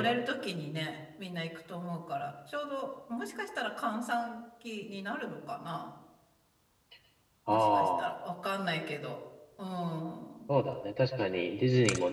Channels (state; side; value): identical; both; correlation 1.00